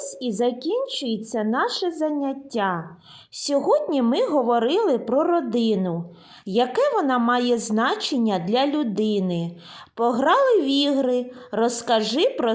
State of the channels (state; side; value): identical; both; correlation 1.00